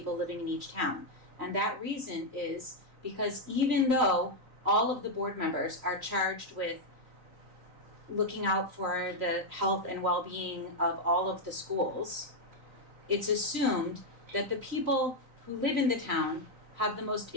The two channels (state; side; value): late; left; 3.9 ms